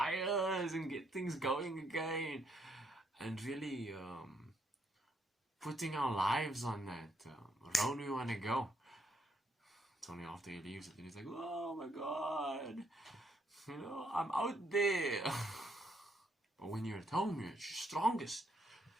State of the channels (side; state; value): both; normal; correlation 0.73